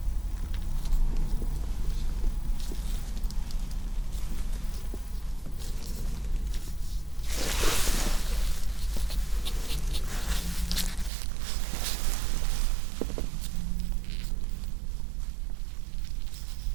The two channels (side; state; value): left; drops out; at 11.1 s